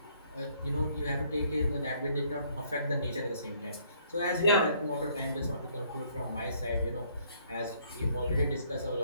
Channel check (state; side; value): inverted; both; correlation -0.65